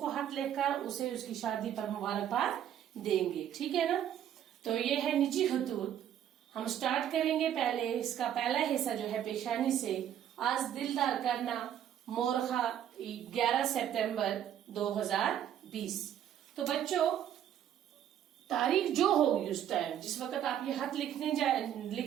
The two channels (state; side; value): quieter; left; 10.3 dB